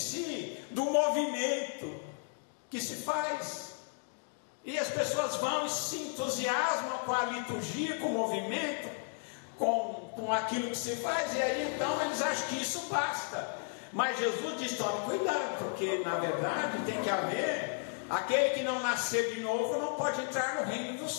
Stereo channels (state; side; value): silent; right; 55 dB below the other